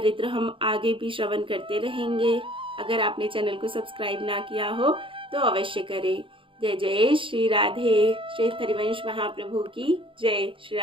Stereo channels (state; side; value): late; left; 0.25 ms